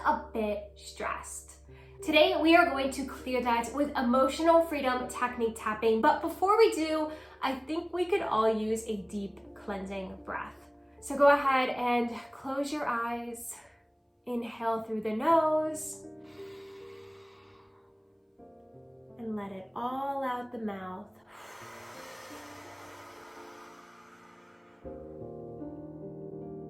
a bit stressed. Today, we are going to clear that with emotional freedom technique tapping. But before we do, I think we could all use a deep cleansing breath. So go ahead and close your eyes. Inhale through the nose. And let it all out the mouth.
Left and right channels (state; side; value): identical; both; correlation 1.00